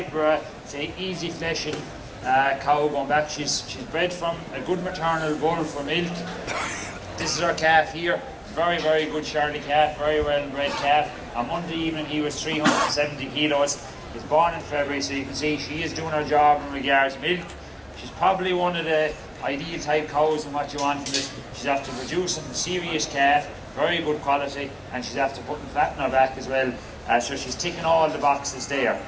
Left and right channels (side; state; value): both; identical; correlation 1.00